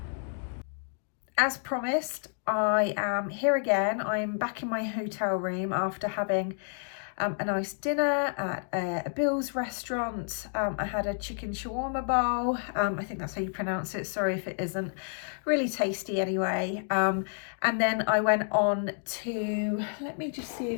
As promised, I am here again. I'm back in my hotel room after having a nice dinner at a Bill's restaurant. I had a chicken shawarma bowl. I think that's how you pronounce it. Sorry if it isn't. Really tasty anyway. And then I went on to, let me just see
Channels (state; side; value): silent; right; 58 dB below the other